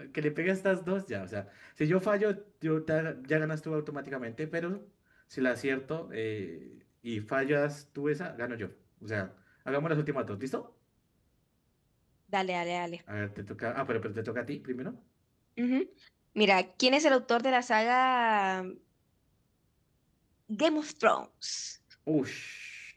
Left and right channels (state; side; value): identical; both; correlation 1.00